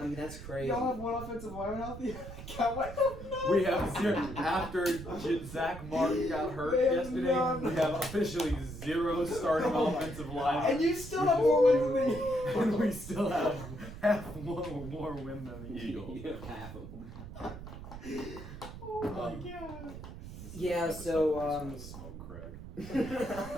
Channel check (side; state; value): right; noise; rumble, 12 dB below the sound